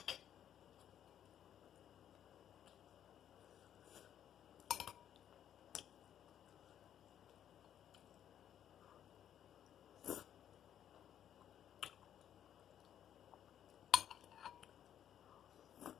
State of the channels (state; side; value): quieter; right; 10.0 dB